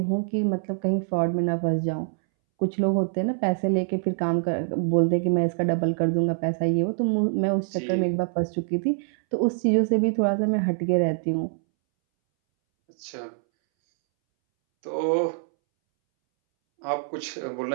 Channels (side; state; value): left; silent; 62 dB below the other